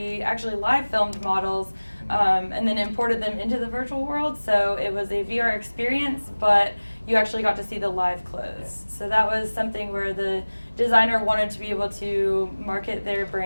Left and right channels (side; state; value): both; inverted; correlation -1.00